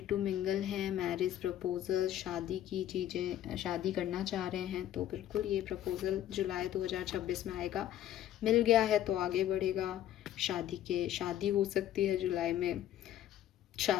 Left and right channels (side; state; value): right; quieter; 12.0 dB